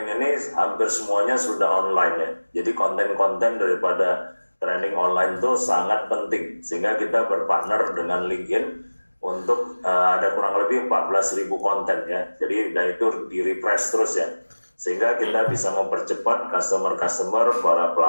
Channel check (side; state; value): both; inverted; correlation -1.00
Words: ini hampir semuanya sudah online, ya. Jadi konten-konten daripada training online itu sangat penting sehingga kita berpartner dengan LinkedIn untuk ada kurang lebih 14.000 konten, ya. Jadi dan itu di refresh terus, ya. sehingga kita bisa mempercepat customer-customer, para